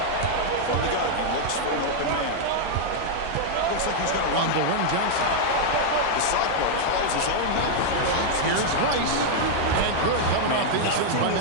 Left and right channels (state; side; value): different; both; correlation -0.01